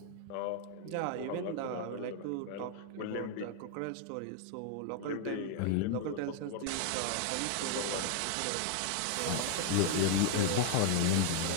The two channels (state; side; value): different; both; correlation 0.00